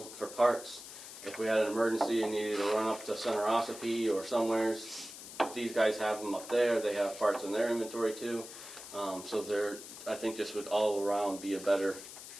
for parts. If we had an emergency and needed to run up to Center Ossipee or somewheres, these guys have them up there. They have parts in their inventory too. So I think this would all around be a better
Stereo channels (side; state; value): left; noise; hiss, 13 dB below the sound